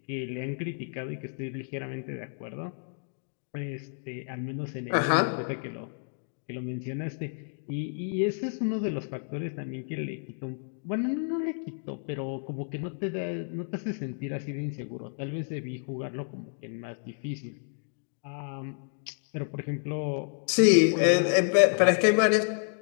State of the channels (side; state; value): right; silent; 58 dB below the other